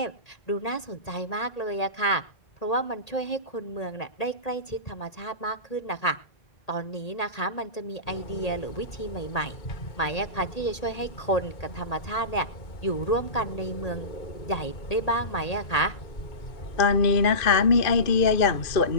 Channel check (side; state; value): right; late; 1.8 ms